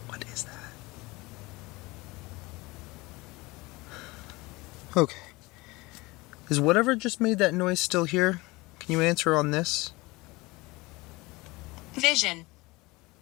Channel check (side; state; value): right; quieter; 22.6 dB